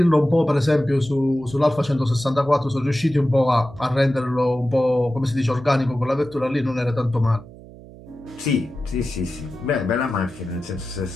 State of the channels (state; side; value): noise; right; hum, 19 dB below the sound